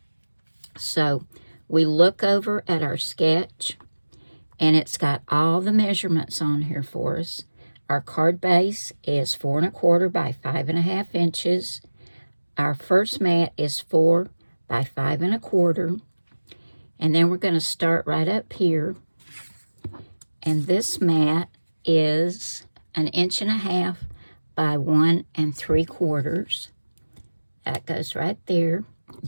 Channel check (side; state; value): both; inverted; correlation -1.00